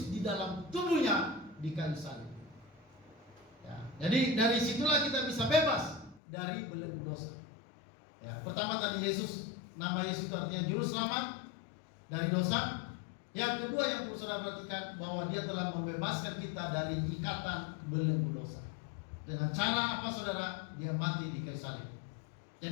di dalam tubuhnya di kayu salib. Ya, jadi dari situlah kita bisa bebas dari belenggu dosa. Ya, pertama tadi Yesus, nama Yesus itu artinya juru selamat dari dosa. Yang kedua yang perlu saudara perhatikan, bahwa Dia telah membebaskan kita dari ikatan belenggu dosa. Dengan cara apa, saudara? Dia mati di kayu salib.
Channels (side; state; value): right; drops out; at 6.2 s